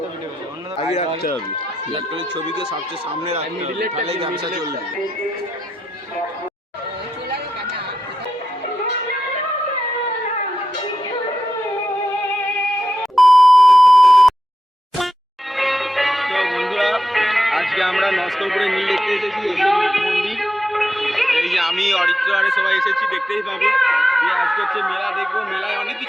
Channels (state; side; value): normal; both; correlation 0.88